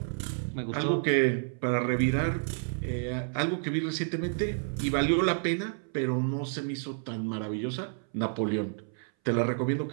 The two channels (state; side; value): silent; left; 58 dB below the other